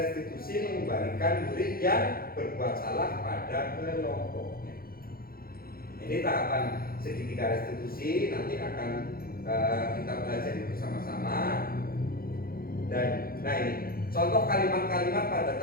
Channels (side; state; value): right; late; 0.43 ms